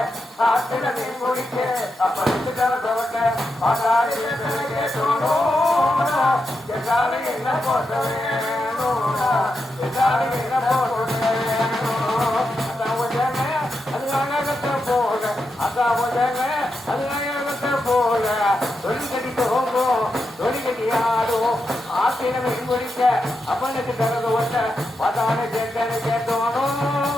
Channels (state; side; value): normal; both; correlation 0.86